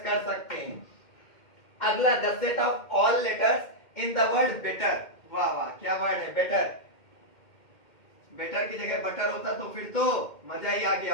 कर सकते हैं। अगला the set of all letters in the word better, वाह वाह क्या वर्ड है बेटर, बेटर की जगह बटर होता तो फिर तो मजा ही आ गया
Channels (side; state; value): right; late; 2.1 ms